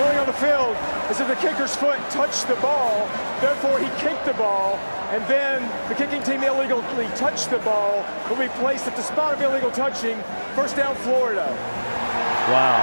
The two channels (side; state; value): both; inverted; correlation -1.00